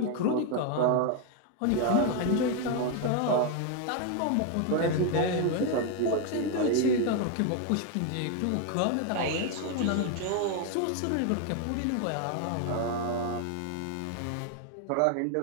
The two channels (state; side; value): different; both; correlation 0.01